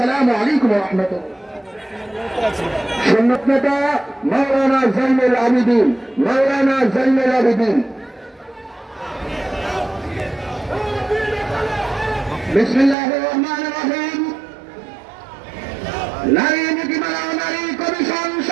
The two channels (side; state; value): left; drops out; at 13.0 s